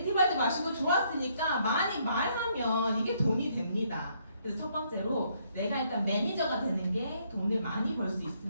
마시고 좋았으니까 많이 말하면 이게 돈이 됩니다. 그래서 첫 번째로 내가 일단 매니저가 되는 게 돈을 많이 벌 수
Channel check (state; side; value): inverted; both; correlation -0.70